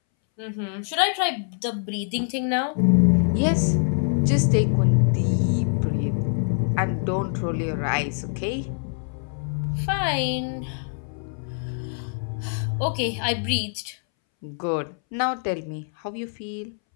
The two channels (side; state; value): right; silent; 62 dB below the other